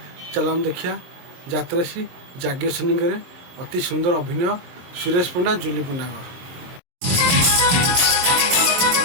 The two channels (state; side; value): late; left; 23 ms